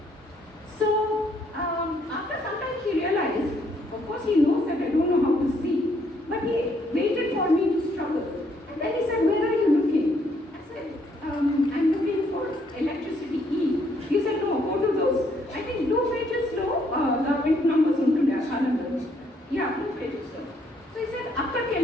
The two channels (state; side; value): normal; both; correlation 0.69